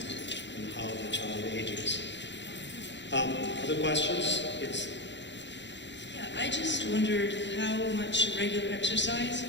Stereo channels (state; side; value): late; right; 0.52 ms